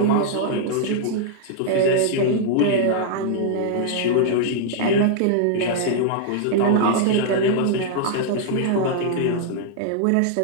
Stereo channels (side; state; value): both; different; correlation -0.01